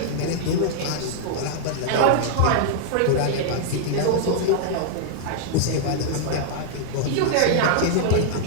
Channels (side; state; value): both; different; correlation -0.01